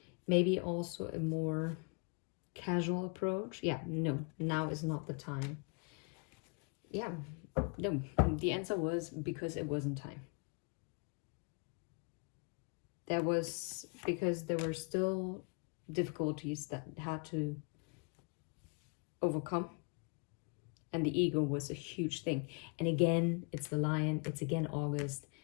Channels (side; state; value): right; quieter; 35.2 dB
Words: Maybe also a more casual approach. Yeah, no, now is not the time. Yeah, no, the answer was because it wasn't time. There was, because there were still difficulties that had to overcome. And the ego was a huge thing. And again, it's the lion. It's again August.